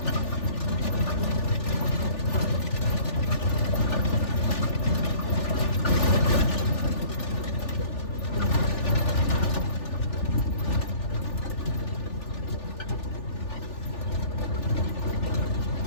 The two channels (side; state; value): right; late; 3.4 ms